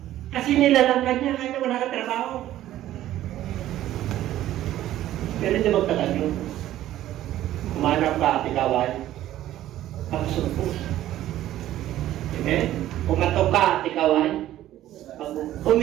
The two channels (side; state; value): left; quieter; 13.5 dB